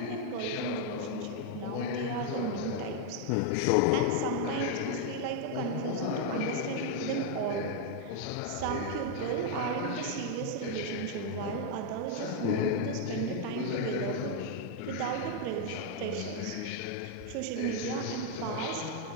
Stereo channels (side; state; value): both; different; correlation 0.00